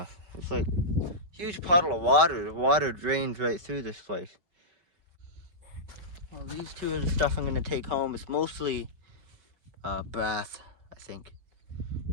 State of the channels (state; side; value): late; left; 5.2 ms